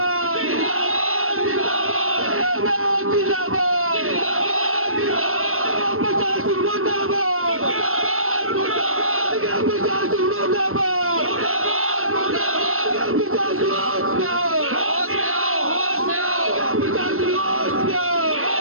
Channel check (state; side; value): late; left; 0.62 ms